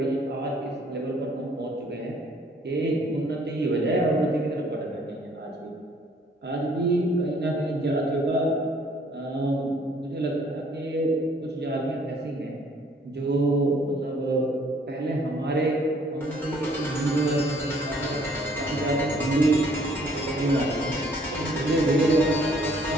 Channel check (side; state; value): both; normal; correlation 0.61